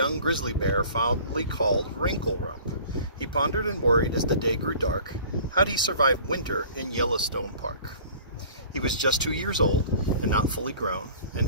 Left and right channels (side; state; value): both; inverted; correlation -0.47